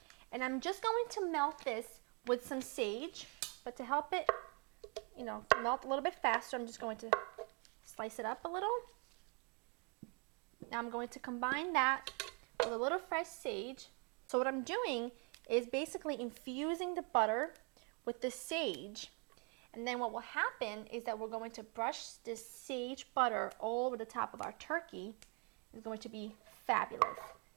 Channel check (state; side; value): quieter; left; 35.6 dB